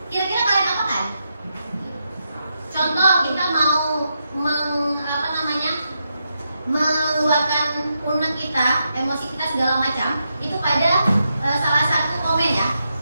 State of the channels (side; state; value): both; inverted; correlation -0.84